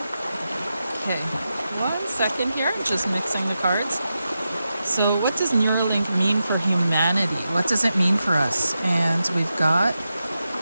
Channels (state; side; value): inverted; both; correlation -0.90